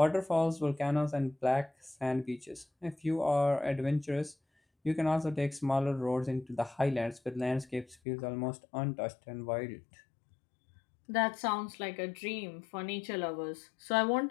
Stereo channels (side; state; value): right; drops out; at 8.0 s